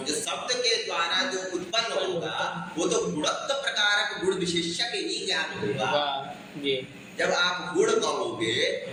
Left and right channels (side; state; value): both; identical; correlation 1.00